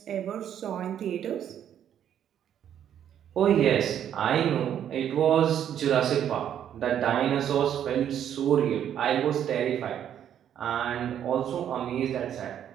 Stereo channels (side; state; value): left; quieter; 9.8 dB